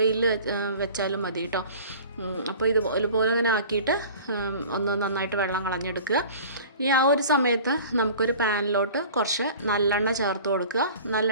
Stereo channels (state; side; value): inverted; both; correlation -0.42